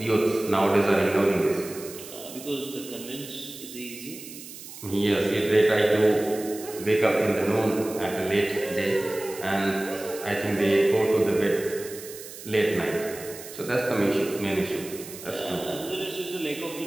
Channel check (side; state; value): right; noise; hiss, 14 dB below the sound